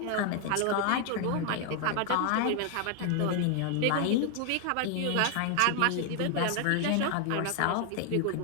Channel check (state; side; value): different; both; correlation 0.00